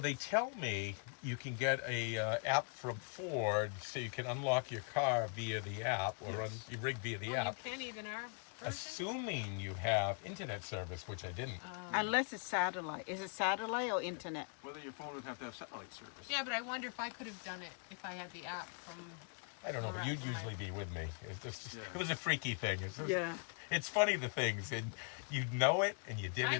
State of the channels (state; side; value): quieter; right; 39.6 dB